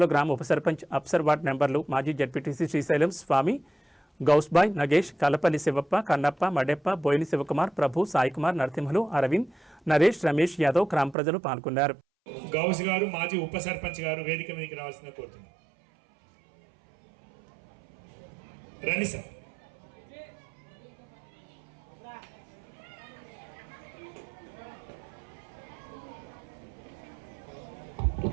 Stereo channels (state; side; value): drops out; left; at 11.2 s